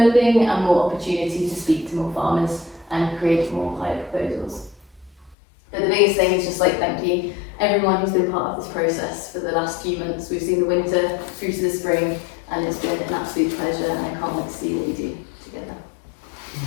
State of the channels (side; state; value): right; drops out; at 5.4 s